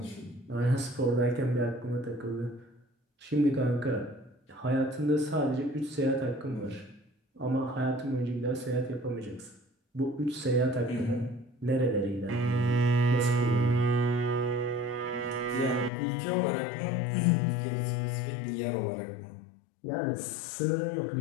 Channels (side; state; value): right; drops out; at 15.9 s